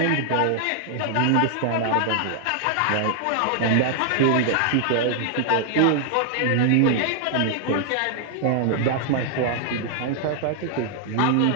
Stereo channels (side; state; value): both; different; correlation 0.00